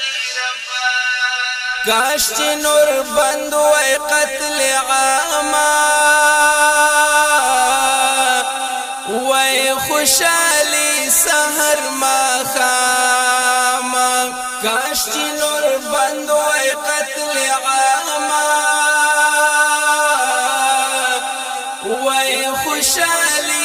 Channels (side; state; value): both; identical; correlation 1.00